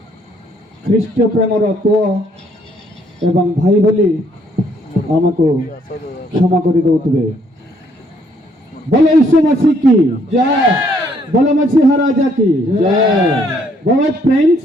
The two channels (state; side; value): normal; both; correlation 0.67